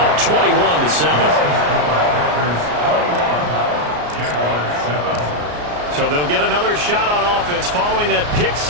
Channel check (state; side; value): late; left; 34 ms